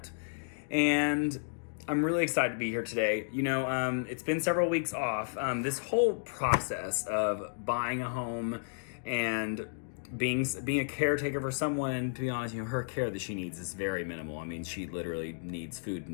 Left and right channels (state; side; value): silent; right; digital silence